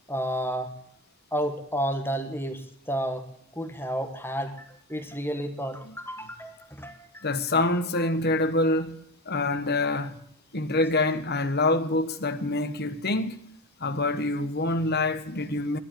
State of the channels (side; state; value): both; normal; correlation 0.23